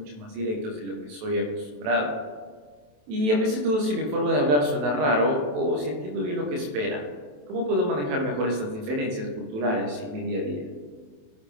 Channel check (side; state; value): left; late; 27 ms